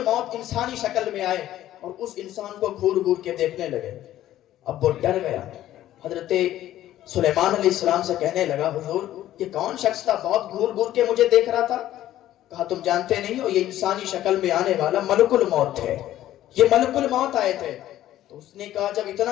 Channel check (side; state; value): right; quieter; 13.2 dB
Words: انسانی شکل میں آئے اور اس انسان کو گھور گھور کے دیکھنے لگے. اب وہ ڈر گیا. حضرت سلیمان علیہ السلام سے کہنے لگا حضور یہ کون شخص تھا, بہت گھور گھور کے مجھے دیکھ رہا تھا؟ کہا تم جانتے نہیں ہو, یہ انسانی شکل میں آنے والا ملک الموت تھے, یہ ملک الموت آئے تھے. تو اس نے کہا جب